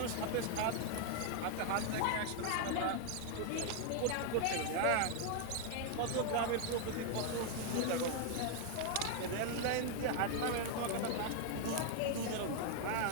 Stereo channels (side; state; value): both; different; correlation 0.00